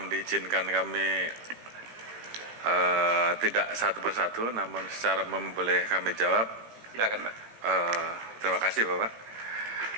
diizinkan kami tidak satu persatu, namun secara umum boleh kami jawab. Silakan, Pak. Terima kasih, Bapak.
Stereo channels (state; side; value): late; left; 18 ms